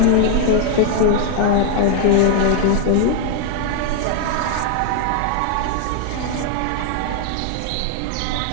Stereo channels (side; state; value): both; different; correlation 0.00